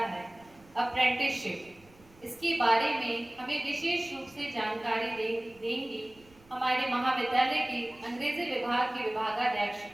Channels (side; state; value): right; noise; rumble, 27 dB below the sound